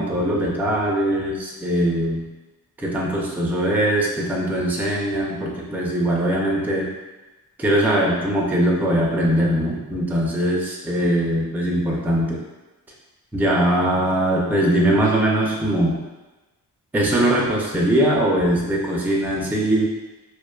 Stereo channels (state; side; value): normal; both; correlation 0.52